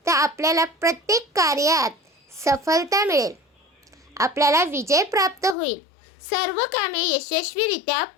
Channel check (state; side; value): drops out; right; at 5.6 s